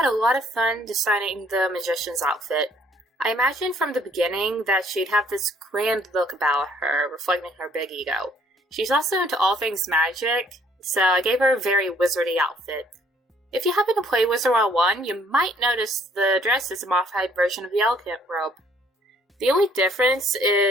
a lot of fun designing the Magician's outfit. I imagined from the beginning that she'd have this grand look about her, reflecting her big ego. She's also into all things magic, so I gave her a very wizardy outfit. If you happen to play Wizard 101, you might notice the dress is a modified version of the elegant robe. The only difference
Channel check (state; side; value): normal; both; correlation 0.62